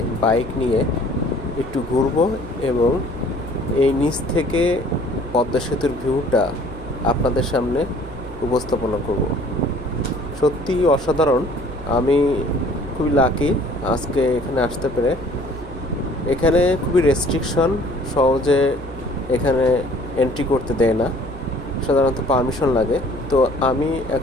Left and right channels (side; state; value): right; noise; hum, 15 dB below the sound